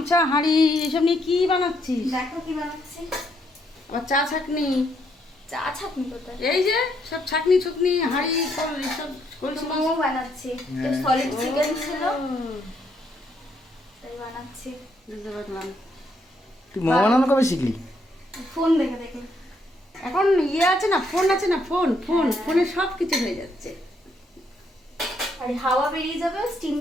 হাঁড়ি এসব নিয়ে কি বানাচ্ছিস? দেখো কি বানাচ্ছি। আবার চা ছাকনি। চা ছাকনি কোথায়? এই যে সব ছাকনি ছুকনি হাঁড়ি সব এসব কলসি মোমো বানাচ্ছি। সলিড চিকেন ছিল তাই বানাচ্ছি। বুঝতে পারলাম। তুই মোমো বানানো কবে শিখলি? ফোন দেখে দেখে। এখন আছে না, ফোন আছে না, ফোনে সব কিছু হয়ে যাচ্ছে। আর হাওয়া বেরিয়ে যাবে,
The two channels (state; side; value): normal; both; correlation 0.74